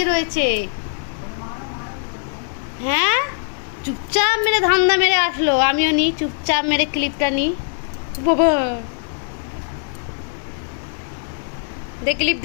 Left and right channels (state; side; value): silent; right; digital silence